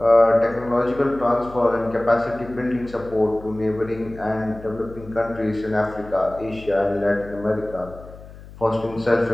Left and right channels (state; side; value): noise; left; hum, 18 dB below the sound